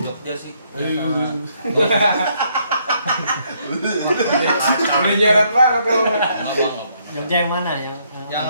sih. Udah nyeret banget kalau. Jogja yang mana yang Yang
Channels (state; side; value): inverted; both; correlation -0.71